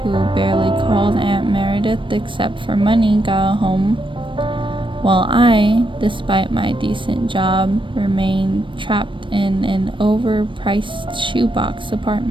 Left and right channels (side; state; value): left; late; 0.24 ms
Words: who barely called Aunt Meredith except for money, got a home, while I, despite my decent job, remained trapped in an overpriced shoebox